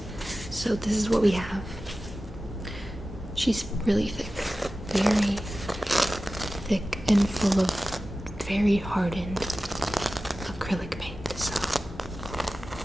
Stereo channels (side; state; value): both; normal; correlation 0.95